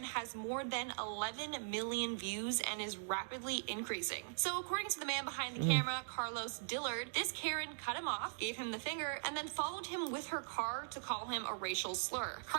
has more than 11 million views and is rapidly increasing. So according to the man behind the camera, Carlos Dillard, this Karen cut him off, gave him the finger, and then followed him with her car to call him a racial slur.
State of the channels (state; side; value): silent; left; digital silence